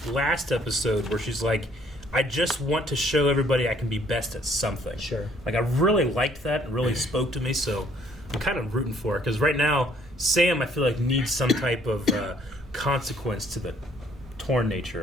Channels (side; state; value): both; normal; correlation 0.63